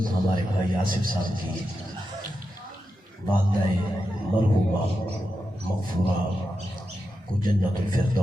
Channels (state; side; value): normal; both; correlation 0.88